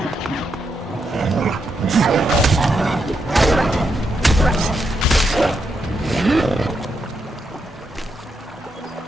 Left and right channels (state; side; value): normal; both; correlation 0.82